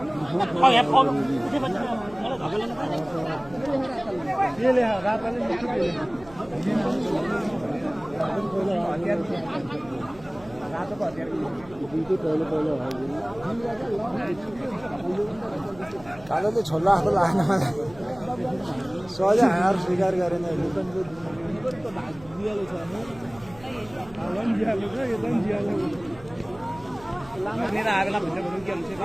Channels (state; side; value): noise; right; hum, 21 dB below the sound